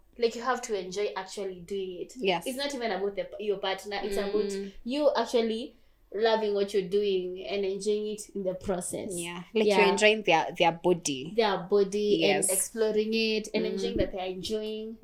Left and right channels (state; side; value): identical; both; correlation 1.00